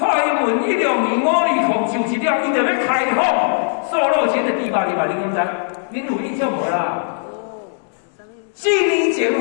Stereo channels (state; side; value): silent; right; digital silence